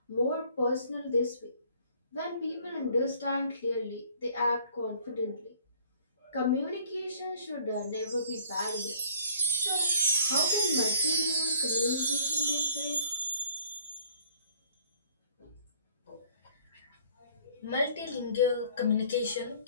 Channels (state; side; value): inverted; both; correlation -0.57